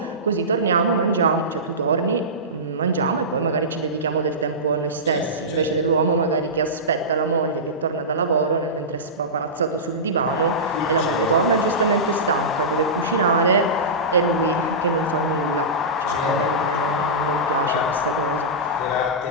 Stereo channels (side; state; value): both; normal; correlation -0.18